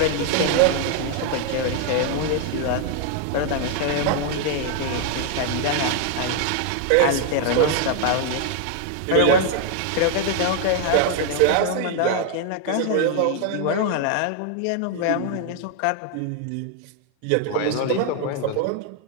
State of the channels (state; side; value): different; both; correlation 0.00